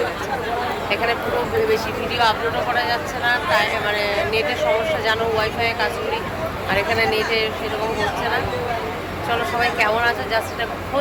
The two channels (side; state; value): both; identical; correlation 1.00